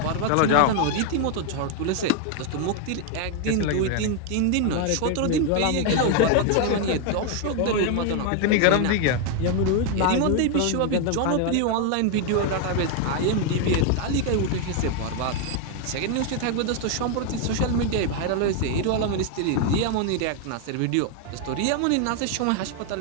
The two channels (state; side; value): different; both; correlation 0.01